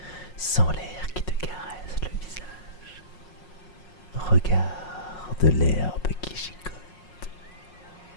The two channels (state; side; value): late; right; 5.5 ms